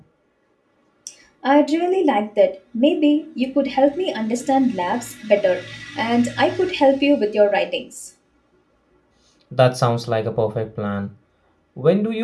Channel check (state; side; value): identical; both; correlation 1.00